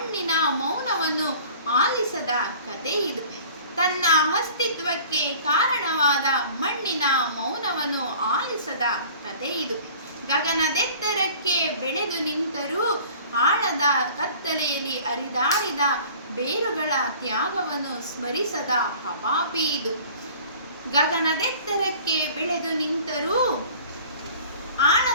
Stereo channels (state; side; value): inverted; both; correlation -0.46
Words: ಮೌನವನ್ನು ಆಲಿಸದ ಕತೆ ಇದು. ತನ್ನ ಅಸ್ತಿತ್ವಕ್ಕೆ ಕಾರಣವಾದ ಮಣ್ಣಿನ ಮೌನವನ್ನು ಆಲಿಸದ ಕತೆ ಇದು. ಗಗನದೆತ್ತರಕ್ಕೆ ಬೆಳೆದು ನಿಂತರೂ ಆಳದ ಕತ್ತಲೆಯಲ್ಲಿ ಹರಿದಾಡಿದ ಬೇರುಗಳ ತ್ಯಾಗವನ್ನು ಸ್ಮರಿಸದ ಹಪಾಪಿ ಇದು. ಗಗನದೆತ್ತರಕ್ಕೆ ಬೆಳೆದು ನಿಂತರೂ